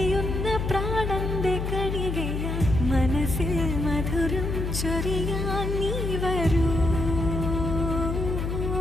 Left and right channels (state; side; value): noise; left; hum, 2 dB below the sound